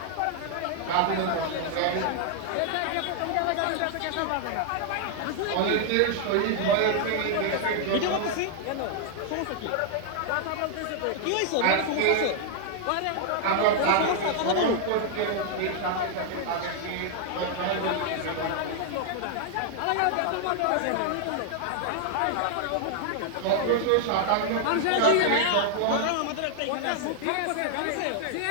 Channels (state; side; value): different; both; correlation 0.00